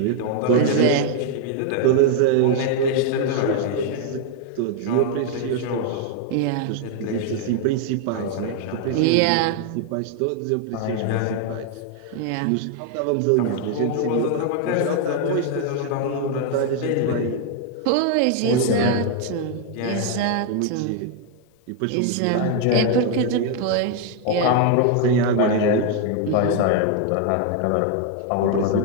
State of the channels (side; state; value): both; different; correlation 0.00